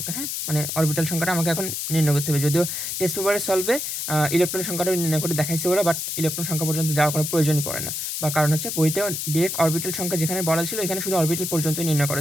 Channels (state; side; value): noise; left; hiss, 3 dB below the sound